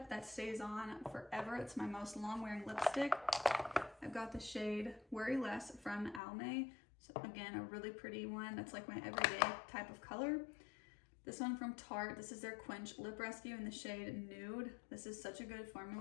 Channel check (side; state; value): right; drops out; at 6.2 s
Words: that stays on forever. It's my most long-wearing lipstick. I've got the shade Worry Less from Almay. So again, a really pretty one. That's like my everyday type of color. This one from Tarte. This is their Quench Lip Rescue in the shade Nude. This is such a good